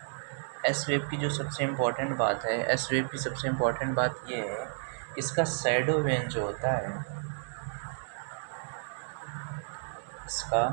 वेव की जो सबसे इम्पोर्टेंट बात है, एस वेव की सबसे इम्पोर्टेंट बात ये है कि इसका शैडो वेन जो होता है, इसका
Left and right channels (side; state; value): left; silent; digital silence